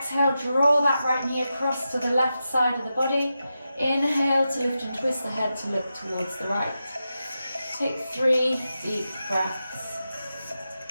draw that right knee across to the left side of the body. Inhale to lift and twist the head to look towards the right. Take 3 deep breaths.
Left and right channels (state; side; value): inverted; both; correlation -0.90